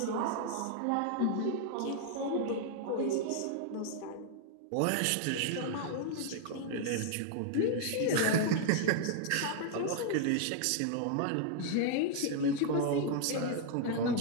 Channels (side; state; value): both; different; correlation 0.00